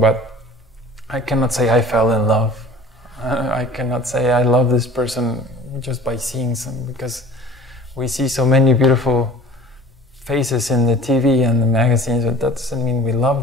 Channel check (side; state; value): both; normal; correlation 0.45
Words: I cannot say I fell in love. I cannot say I love this person just by seeing some, because we see so many beautiful faces in the TV and the magazines, but that doesn't mean we